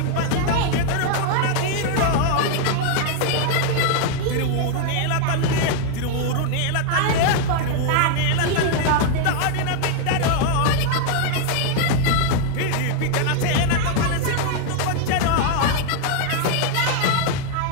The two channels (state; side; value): different; both; correlation 0.00